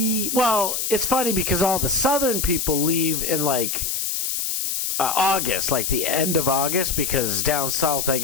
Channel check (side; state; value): left; noise; hiss, 1 dB below the sound